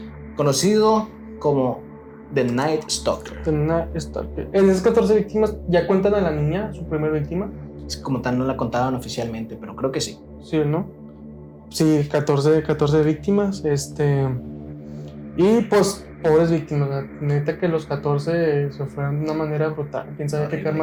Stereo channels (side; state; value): both; identical; correlation 1.00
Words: conocido como The Night Stalker. En esas 14 víctimas, ¿ya cuentan a la niña, su primera víctima? Como tal no la contaban oficialmente, pero creo que sí. Sí, ¿no? Sí, 14 víctimas. Y pues, pobres víctimas. Neta que los 14 se fueron de una manera brutal. Quién sabe qué